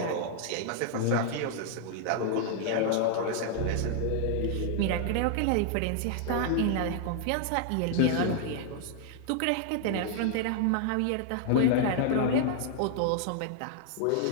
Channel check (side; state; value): both; different; correlation 0.00